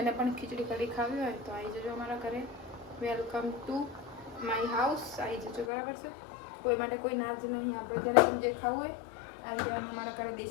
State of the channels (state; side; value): drops out; right; at 5.7 s